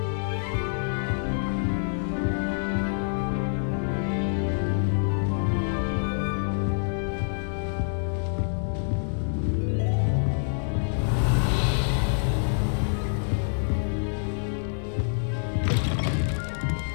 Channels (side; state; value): right; silent; digital silence